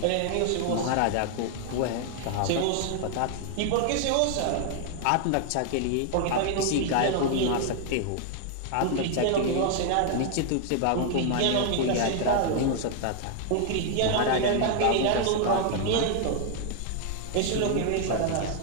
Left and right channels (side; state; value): both; different; correlation 0.00